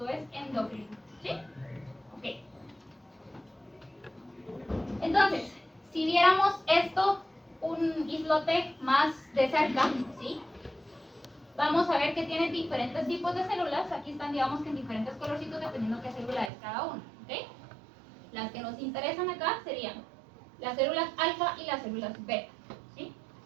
es endocrino, ¿sí? Ok. Entonces, si viéramos esto, un islote más de cerca, ¿sí? Vamos a ver que tiene diferentes tipos de células. Aquí están, digamos, que en diferentes colorcitos dependiendo qué célula es cada una, ¿ok? Las que nos interesan acá serían las células alfa y las células beta, ¿sí?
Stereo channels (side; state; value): left; drops out; at 16.5 s